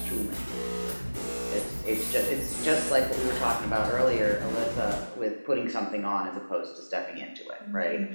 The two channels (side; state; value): both; inverted; correlation -1.00